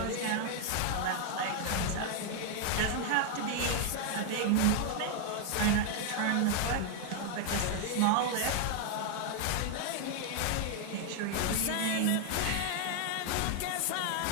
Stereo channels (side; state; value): both; different; correlation 0.00